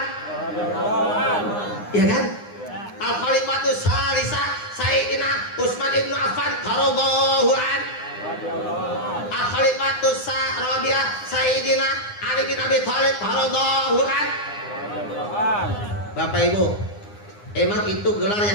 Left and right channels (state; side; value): late; right; 9.8 ms